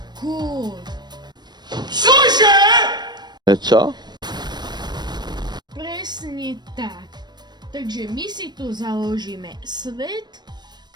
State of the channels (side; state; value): left; late; 0.21 ms